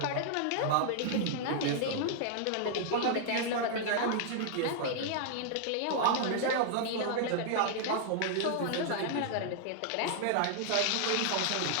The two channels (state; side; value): different; both; correlation -0.01